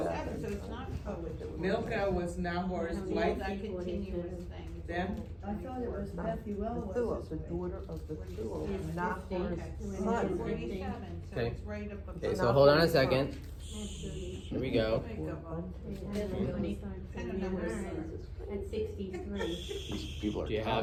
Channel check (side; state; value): both; identical; correlation 1.00